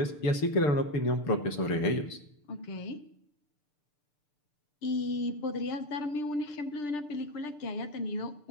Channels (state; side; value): late; right; 6.8 ms